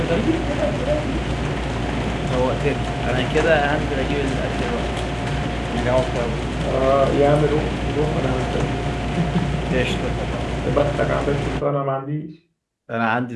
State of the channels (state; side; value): identical; both; correlation 1.00